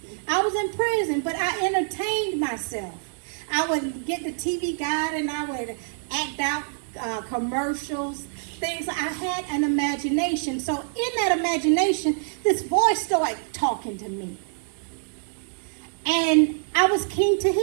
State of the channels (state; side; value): silent; left; digital silence